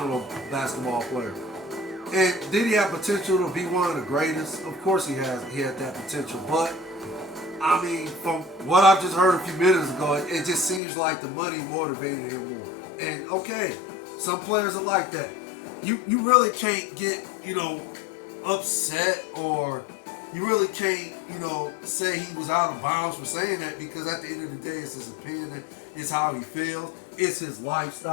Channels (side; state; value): right; drops out; at 10.8 s